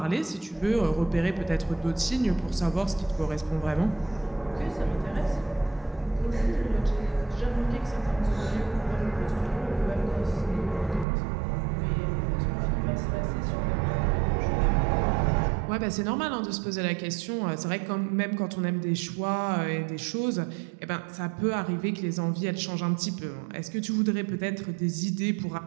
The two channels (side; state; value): left; drops out; at 11.1 s